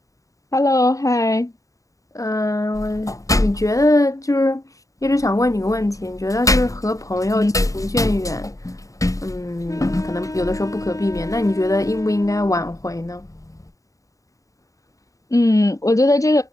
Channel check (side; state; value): right; late; 0.16 ms